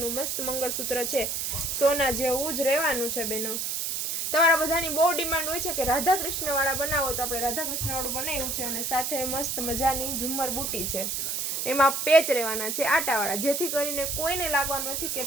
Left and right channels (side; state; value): right; noise; hiss, 1 dB below the sound